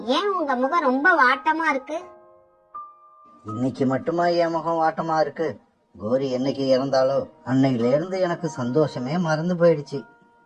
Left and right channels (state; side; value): identical; both; correlation 1.00